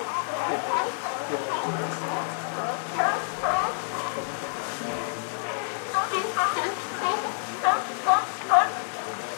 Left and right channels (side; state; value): right; silent; 60 dB below the other